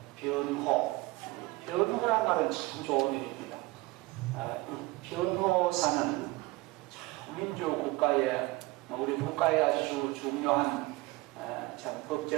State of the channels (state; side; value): quieter; left; 21.5 dB